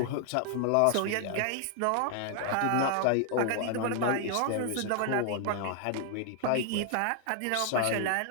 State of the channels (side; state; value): both; different; correlation 0.00